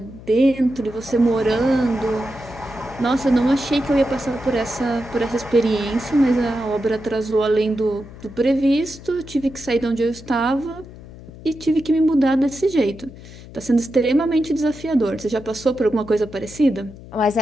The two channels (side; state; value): left; noise; hum, 17 dB below the sound